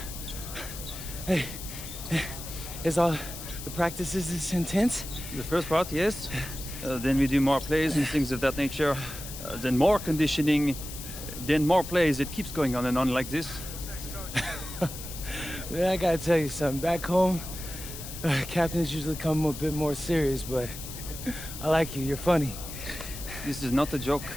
Hey, is all the practices this intense? The first part, yes. Then we do more plays and things of that nature. Then more conditioning. Then more plays. It keeps going on and on like this. Man, I gotta tell you something. Back home, captains usually come a bit more serious, but I like you. You're funny. This is not a joke.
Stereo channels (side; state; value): left; noise; hiss, 11 dB below the sound